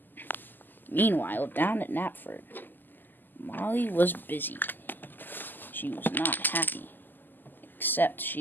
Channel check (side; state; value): right; late; 0.089 ms